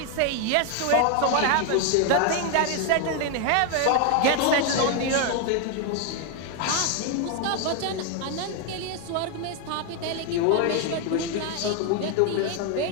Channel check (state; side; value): different; both; correlation 0.01